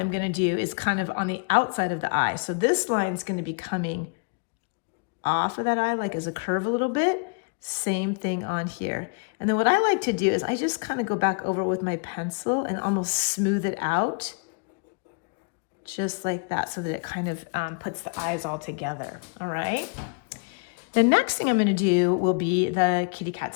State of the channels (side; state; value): right; quieter; 36.4 dB